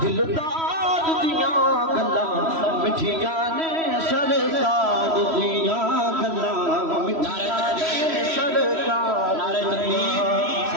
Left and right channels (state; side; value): late; left; 3.1 ms